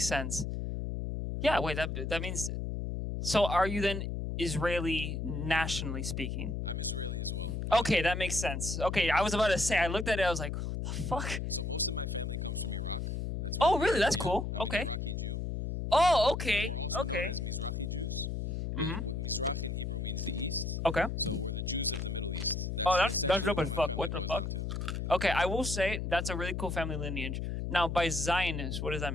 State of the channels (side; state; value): left; noise; hum, 3 dB below the sound